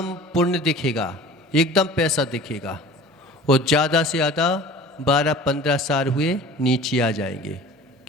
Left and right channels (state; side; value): normal; both; correlation 0.42